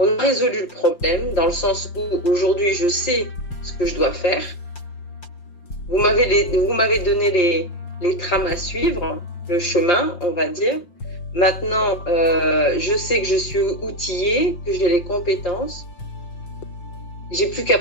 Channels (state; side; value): late; right; 5.7 ms